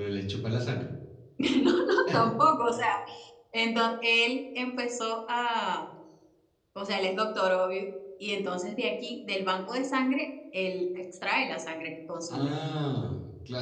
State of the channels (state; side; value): identical; both; correlation 1.00